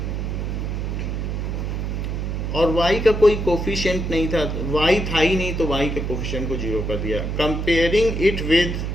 और y का कोई कोफिशिएंट नहीं था, y था ही नहीं, तो y के कोफिशिएंट को 0 कर दिया। Comparing it with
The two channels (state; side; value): noise; right; hum, 2 dB below the sound